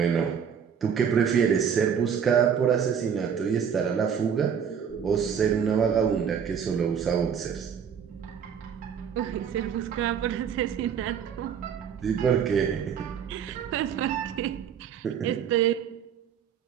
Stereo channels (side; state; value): left; quieter; 7.7 dB